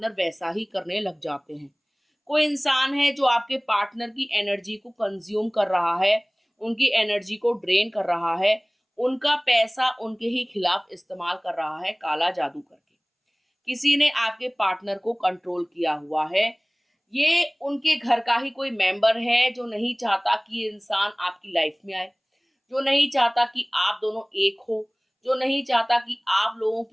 वैसा ही करने लग जाते हैं। कोई इंसान है जो आपके पार्टनर की एनर्जी को कंज्यूम कर रहा है, उनकी एनर्जी को ड्रेन कर रहा है, उनका पैसा उनके ही खिलाफ इस्तेमाल कर रहा है, काला जादू करके। किसी ने आपके पार्टनर को कंट्रोल किया हुआ है। ये उनके घर का ही कोई मेंबर है जो नहीं चाहता कि ये इंसान आपकी लाइफ में आए, जो नहीं चाहता कि आप दोनों एक हो, जो नहीं चाहता कि आप लोगों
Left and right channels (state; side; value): identical; both; correlation 1.00